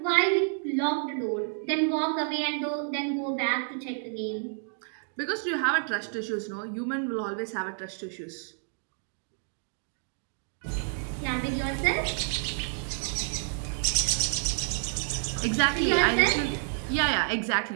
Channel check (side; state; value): left; silent; digital silence